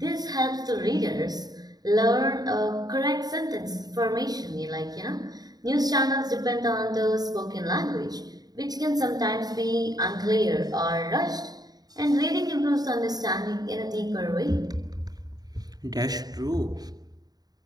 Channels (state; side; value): late; left; 0.19 ms